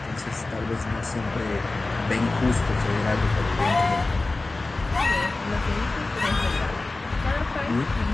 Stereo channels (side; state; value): right; quieter; 3.2 dB